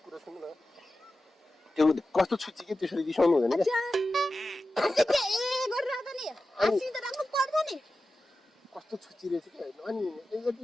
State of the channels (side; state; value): both; normal; correlation 0.94